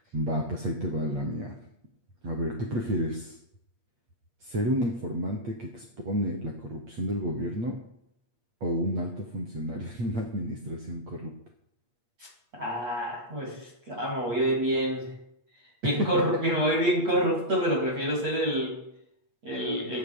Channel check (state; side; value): late; left; 8.5 ms